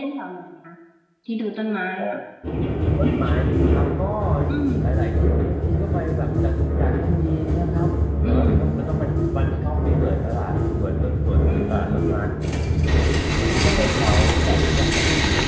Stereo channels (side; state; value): both; identical; correlation 1.00